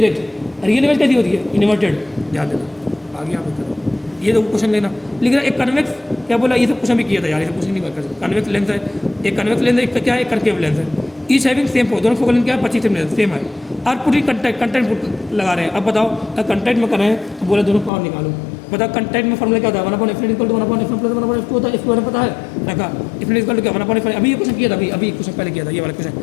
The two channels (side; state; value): right; drops out; at 17.9 s